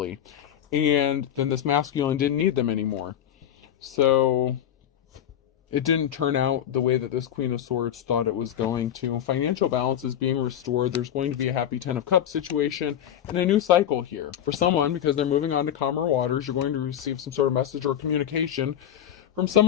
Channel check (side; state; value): right; quieter; 10.3 dB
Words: and then this masculine didn't need them anymore. So it didn't turn out the way that this Queen of Swords thought it was going to. Financial balance is being restored. There's going to be a happy Ten of Cups situation and a new cycle here. For someone, because they're moving on to calmer waters, you're going to receive some sort of message or communication from